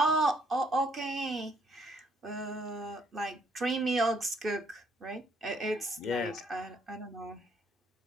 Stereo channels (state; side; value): normal; both; correlation 0.68